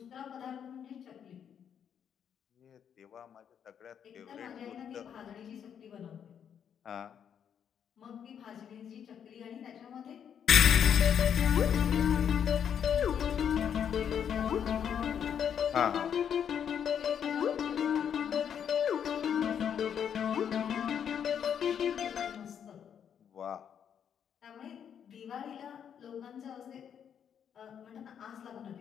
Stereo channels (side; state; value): right; quieter; 8.4 dB